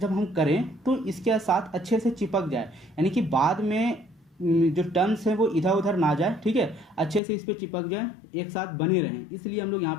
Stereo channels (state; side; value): drops out; right; at 7.2 s